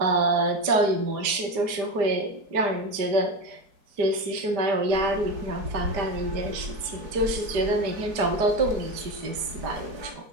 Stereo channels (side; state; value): left; late; 5.0 ms